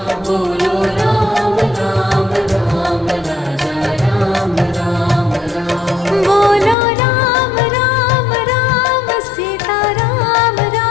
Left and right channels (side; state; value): right; drops out; at 6.8 s